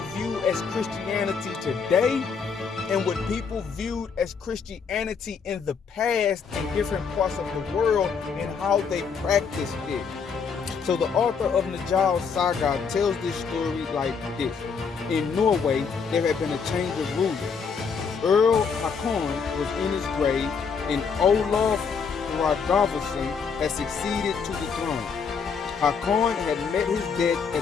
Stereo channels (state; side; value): quieter; right; 5.9 dB